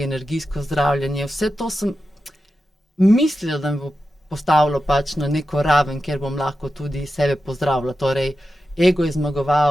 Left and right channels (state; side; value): normal; both; correlation 0.91